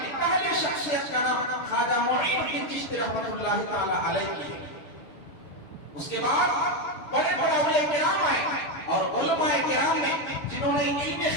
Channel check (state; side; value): late; right; 6.8 ms